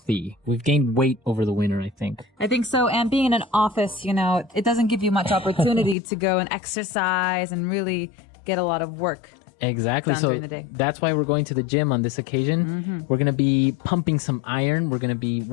We've gained weight over the winter, I think. I think so. And being in an office, it doesn't give you much opportunity to go and exercise and really get a lot of work. Exactly. So that's why we're going to the gym on this occasion. Mm-hmm. We're going to be pumping some iron. We're going to be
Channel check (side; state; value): right; drops out; at 6.0 s